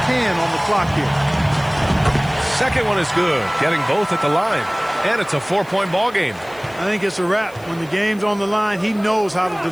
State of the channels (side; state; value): left; noise; hiss, 25 dB below the sound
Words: can on the clock here. Second one is good, getting both at the line. And it's a 4-point ball game. I think it's a wrap. When the game's on the line, he knows how to